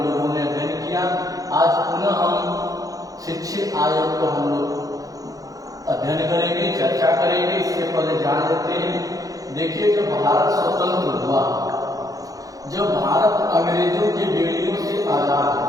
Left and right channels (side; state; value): left; late; 0.17 ms